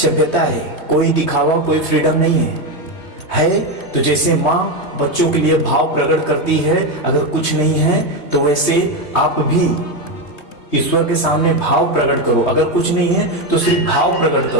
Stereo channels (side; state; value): right; late; 3.2 ms